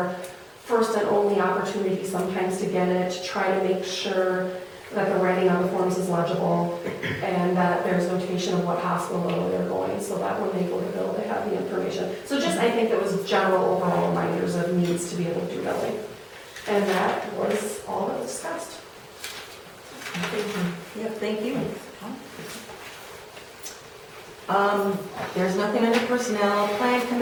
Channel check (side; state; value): both; identical; correlation 1.00